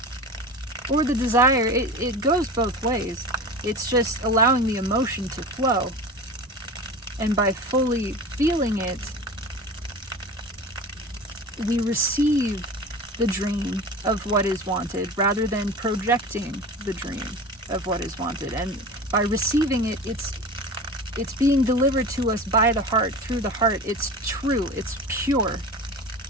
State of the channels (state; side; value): normal; both; correlation 0.33